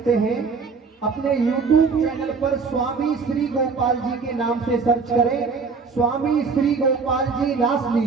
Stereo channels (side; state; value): left; quieter; 4.9 dB